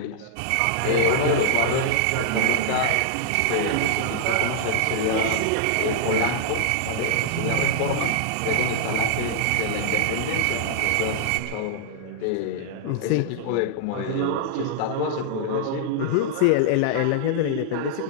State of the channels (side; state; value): both; different; correlation -0.01